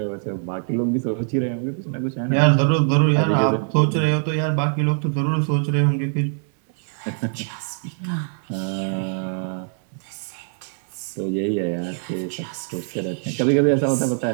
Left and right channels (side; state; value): left; silent; 63 dB below the other